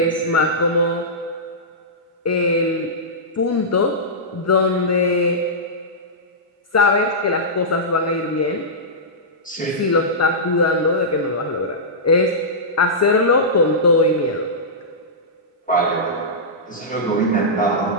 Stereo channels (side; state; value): both; normal; correlation -0.15